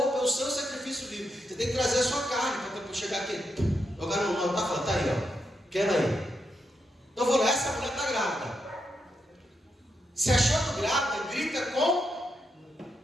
é o seu sacrifício vivo. Você tem que trazer a sua carne para chegar aqui. Agora não está falando, está aí, quero aí. Então eu vou lá, essa mulher está grávida. Se achando grávida, grita com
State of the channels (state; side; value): normal; both; correlation 0.82